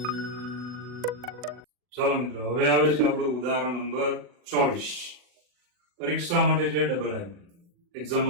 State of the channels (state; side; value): late; left; 40 ms